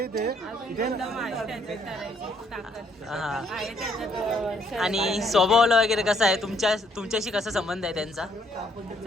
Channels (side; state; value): both; normal; correlation 0.68